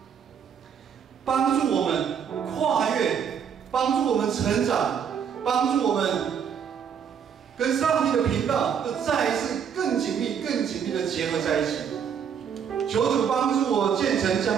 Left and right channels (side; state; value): left; quieter; 7.7 dB